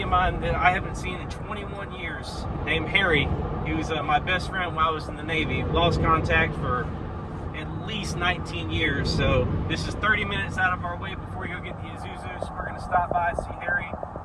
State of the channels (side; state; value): both; identical; correlation 1.00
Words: of mine that I haven't seen in 21 years, named Harry. He was my best friend while I was in the Navy. Lost contact for at least 19 years, so this is 30 minutes out of our way before we go get the Isuzus. We're going to stop by, see Harry,